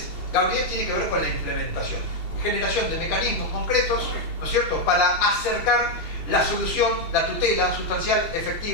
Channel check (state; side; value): late; right; 2.7 ms